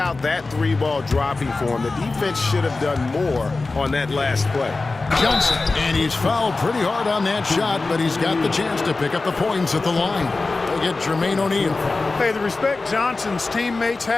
that three ball dropping for him, the defense should have done more on that last play. Johnson, and he's fouled pretty hard on that shot, but he's got the chance to pick up the points at the line. They get Jermaine O'Neal. Hey, the respect Johnson's teammates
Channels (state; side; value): quieter; right; 3.6 dB